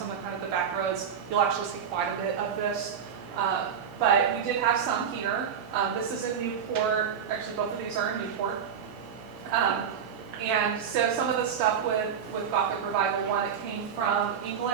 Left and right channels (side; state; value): left; quieter; 7.6 dB